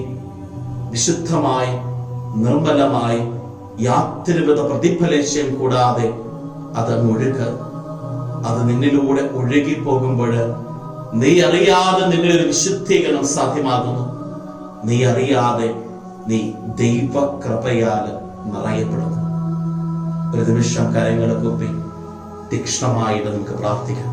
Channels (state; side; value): identical; both; correlation 1.00